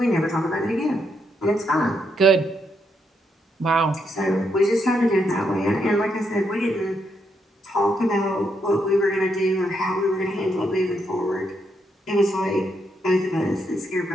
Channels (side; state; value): both; normal; correlation 0.78